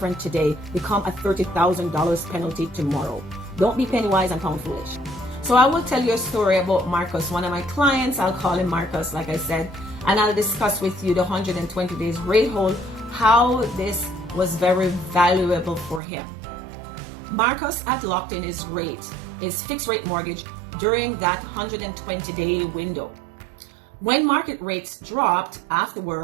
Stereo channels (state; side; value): drops out; left; at 16.0 s